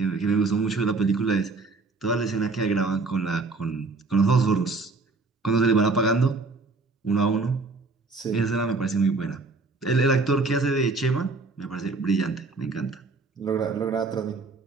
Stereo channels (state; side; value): quieter; left; 3.8 dB